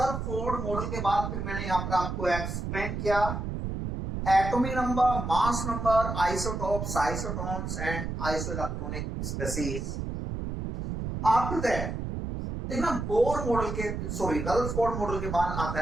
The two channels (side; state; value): right; noise; rumble, 4 dB below the sound